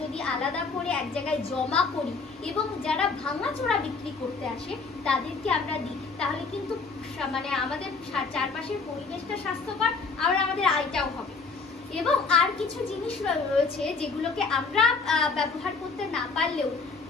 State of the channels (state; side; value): quieter; right; 4.4 dB